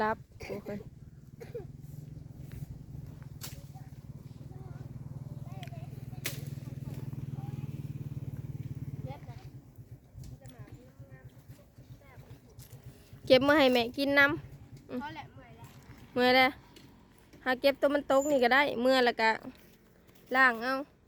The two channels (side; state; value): both; identical; correlation 1.00